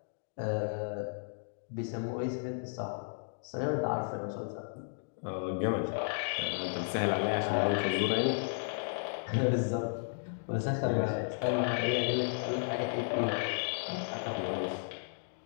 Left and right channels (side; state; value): right; silent; digital silence